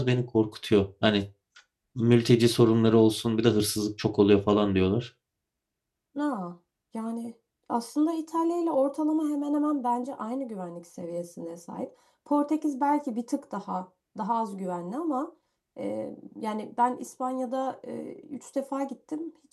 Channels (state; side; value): identical; both; correlation 1.00